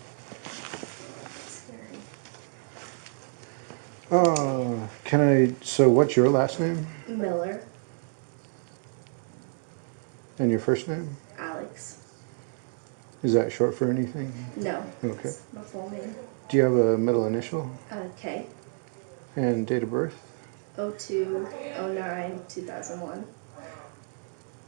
Scary. So what's your last name? Miller. And your first name? Alex. Is that short for anything? No. Okay. It's my full name. Do you have a middle initial? K. And date of birth? 02/09/2001.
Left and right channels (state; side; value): silent; left; digital silence